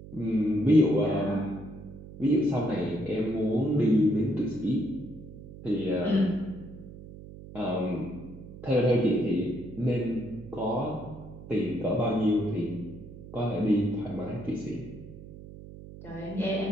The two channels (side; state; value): right; noise; hum, 15 dB below the sound